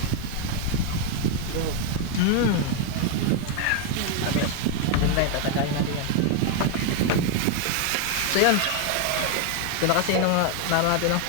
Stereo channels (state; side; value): different; both; correlation 0.01